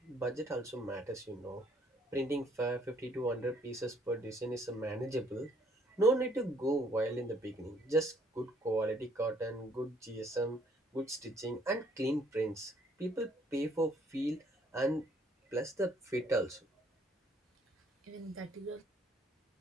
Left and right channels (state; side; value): normal; both; correlation 0.64